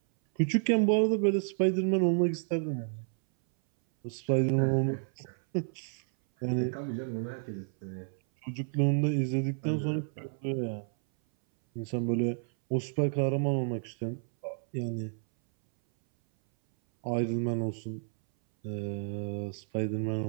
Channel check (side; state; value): left; silent; 57 dB below the other